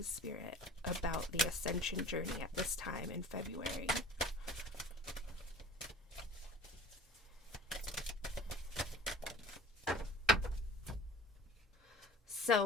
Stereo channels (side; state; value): both; normal; correlation 0.43